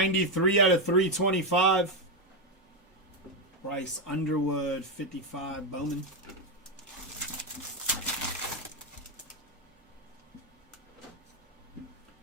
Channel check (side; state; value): both; normal; correlation 0.06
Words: out of 325. Bryce Underwood, 55, Bowman.